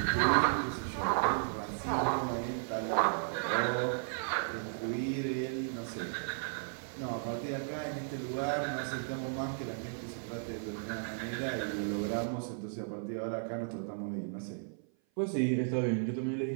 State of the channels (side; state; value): left; silent; 55 dB below the other